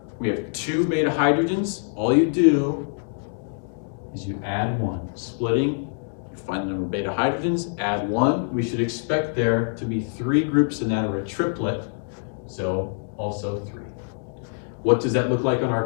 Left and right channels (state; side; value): silent; right; digital silence